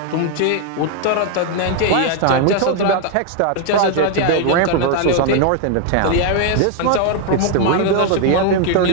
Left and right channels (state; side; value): different; both; correlation 0.00